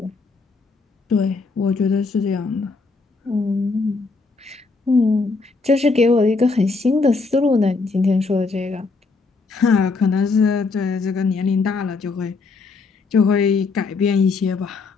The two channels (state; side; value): quieter; right; 4.1 dB